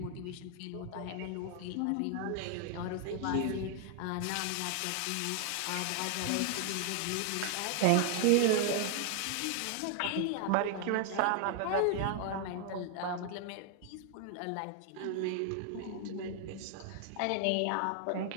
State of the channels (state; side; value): different; both; correlation 0.00